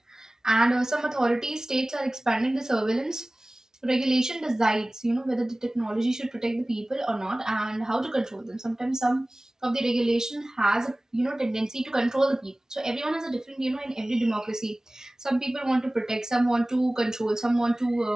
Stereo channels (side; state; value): both; normal; correlation 0.98